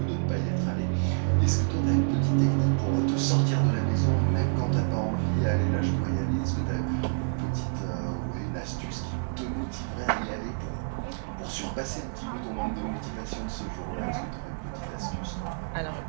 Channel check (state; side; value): silent; left; digital silence